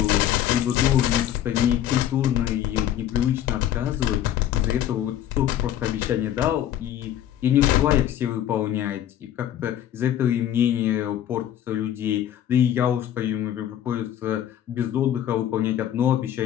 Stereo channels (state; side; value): quieter; right; 11.3 dB